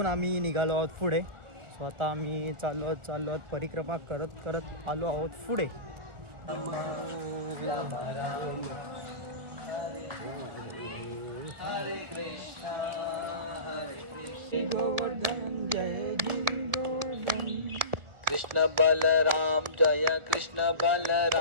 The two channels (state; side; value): late; left; 1.4 ms